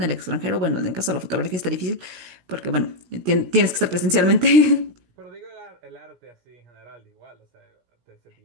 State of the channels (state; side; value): late; left; 17 ms